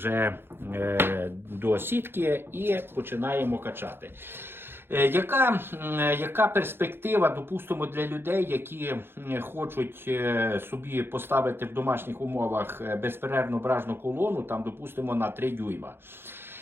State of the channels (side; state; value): left; late; 0.11 ms